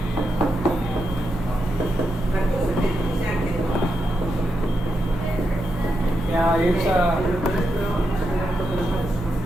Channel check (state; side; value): noise; left; rumble, 12 dB below the sound